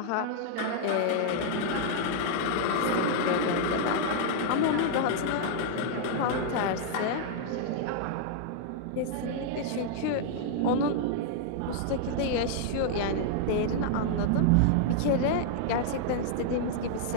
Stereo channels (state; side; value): different; both; correlation -0.01